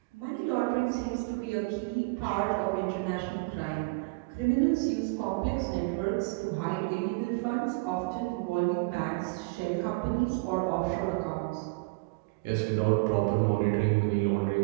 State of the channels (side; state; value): left; quieter; 28.7 dB